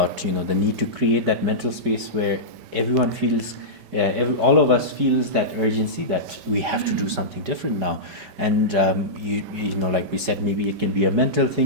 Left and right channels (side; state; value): left; late; 5.2 ms